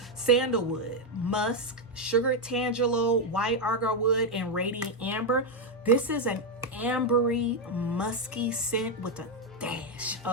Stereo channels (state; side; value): normal; both; correlation 0.03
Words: Sandalwood, Musk, Sugared Tangelo, White Agarwood, and Radiant Amber. This is an ambery, musky scent with a dash